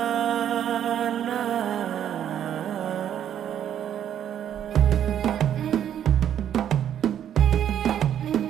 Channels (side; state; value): left; quieter; 10.0 dB